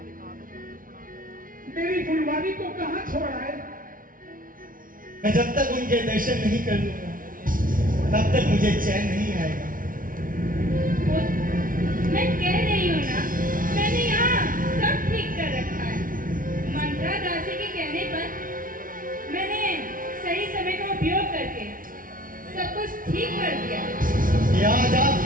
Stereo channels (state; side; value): late; left; 0.40 ms